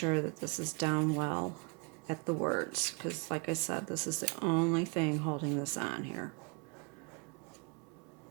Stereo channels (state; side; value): quieter; left; 33.5 dB